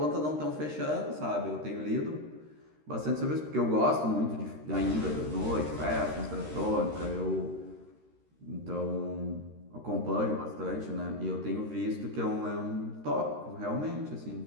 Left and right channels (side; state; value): left; late; 13 ms